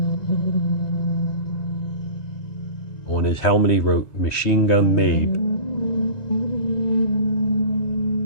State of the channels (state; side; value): late; right; 1.9 ms